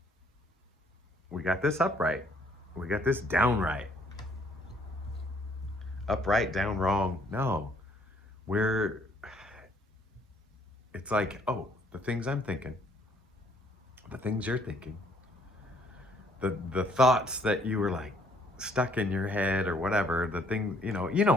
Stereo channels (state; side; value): normal; both; correlation 0.64